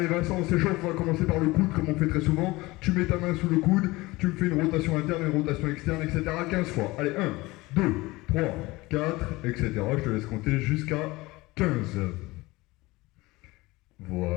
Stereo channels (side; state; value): right; quieter; 21.1 dB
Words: Vincent, on s'échauffe, on va commencer par le coude comme on fait très souvent. Tu mets ta main sous le coude, tu me fais une rotation interne, une rotation externe, etc. 15 fois. Allez, 1, 2, 3, 4, etc. Je te laisse compter jusqu'à 15.